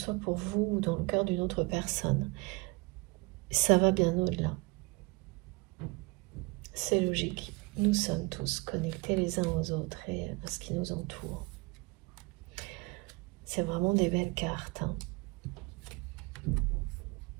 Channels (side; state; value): left; quieter; 26.6 dB